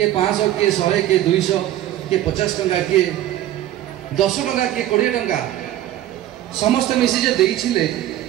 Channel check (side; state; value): left; quieter; 13.2 dB